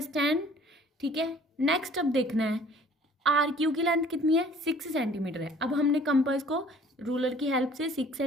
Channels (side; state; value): both; normal; correlation 0.53